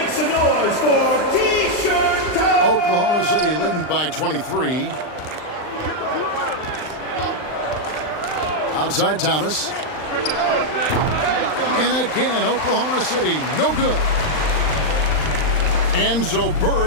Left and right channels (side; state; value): right; late; 39 ms